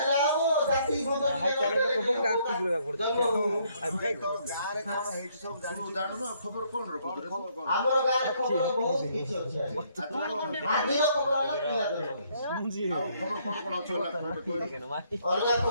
ଆଉ ଜାତି ଗାଁରେ କ'ଣ ହେଇଛି ସବୁ ଜାଣୁନ ଖବର କ'ଣ ରଖୁଛୁ? ଆମର ଗାଁରେ ଖବର ବହୁତ କିଛି ଅଛି ଆଜିର ଖବର ହେଲା ପିଲା ଧରିବ। ଆଉ ଖବର କ'ଣ କ'ଣ ଅଛି? ଅଲଗା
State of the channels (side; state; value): both; inverted; correlation -0.68